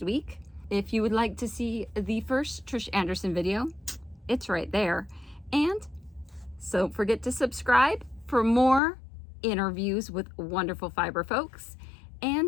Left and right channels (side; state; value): right; drops out; at 8.8 s